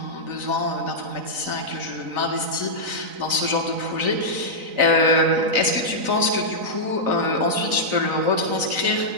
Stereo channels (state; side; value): late; left; 4.0 ms